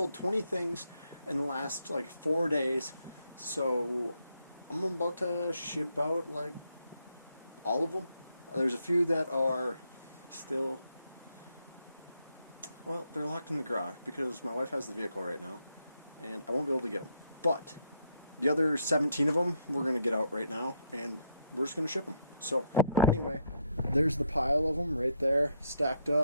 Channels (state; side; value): inverted; both; correlation -0.75